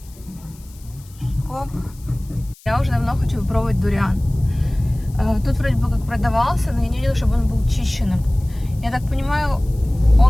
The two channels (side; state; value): left; noise; hiss, 25 dB below the sound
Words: Оп. Я уже давно хочу попробовать дуриан. Тут вроде бы как продавался, но я не видела, чтобы он был чищенным. Я так понимаю,